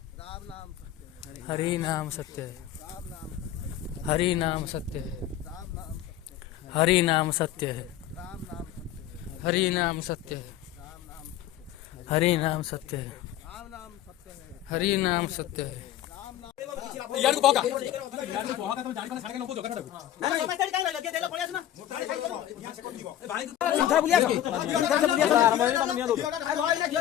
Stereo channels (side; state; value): right; quieter; 12.1 dB